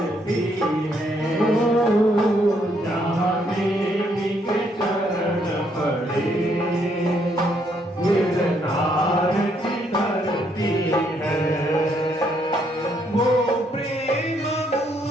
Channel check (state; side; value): normal; both; correlation 0.72